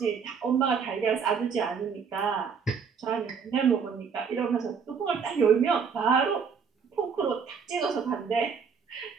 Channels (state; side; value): quieter; left; 6.2 dB